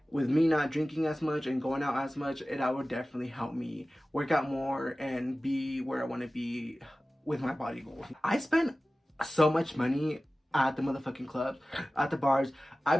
with me not drinking as much and going out as much, that would definitely help me work out more and be where I want to be with my body goals. I spend so much money at the motherfucking clubs, at the bars. I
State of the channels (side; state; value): both; normal; correlation 0.96